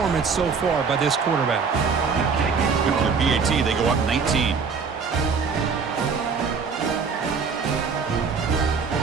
so far by this quarterback. With the BAT, they go up 19.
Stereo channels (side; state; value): left; quieter; 5.4 dB